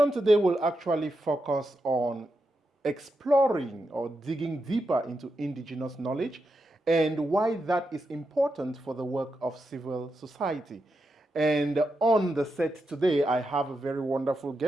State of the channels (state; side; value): normal; both; correlation 0.86